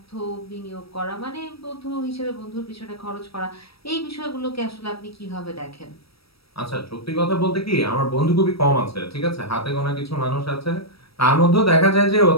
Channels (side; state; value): right; late; 0.76 ms